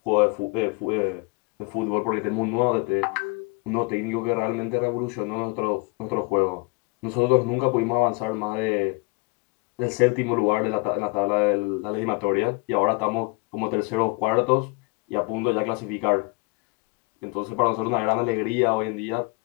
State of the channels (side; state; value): right; quieter; 28.3 dB